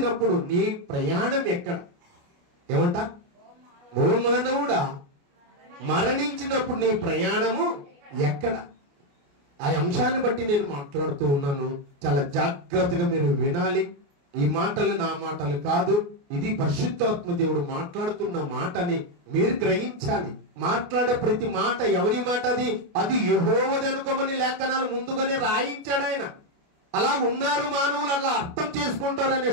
నీ ప్రయాణం ఎక్కడ? ఏమంట? ఓ మానవుడా, మరణించినప్పుడు నీ ప్రయాణము ఎక్కడ? ఆ అంశాన్ని బట్టి నేను మాట్లాడుతూ ఉన్నాను. చాలా జాగ్రత్తగా మీరు వినాలి. ఈ మాటలు నా మాటలు కాదు, ఇది పరిశుద్ధాత్మ దేవుడు మాట్లాడుతున్న మాటని మీరు గ్రహించాలి. మాట్లాడే ప్రతి మాట ఎవరి మాట? అది యెహోవాది అనుకోమని లేఖనాలు ముందుగానే రాయించాడు ఆయన. అలా ఉన్నారు మానవులు, అలా అర్థం చేసుకుంటారనే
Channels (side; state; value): left; late; 28 ms